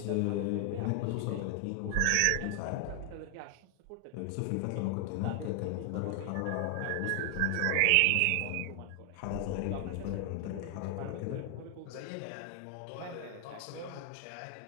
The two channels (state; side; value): different; both; correlation 0.00